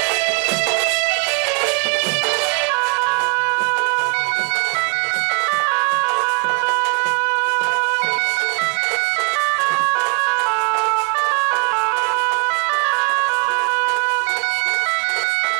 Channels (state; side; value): quieter; left; 37.4 dB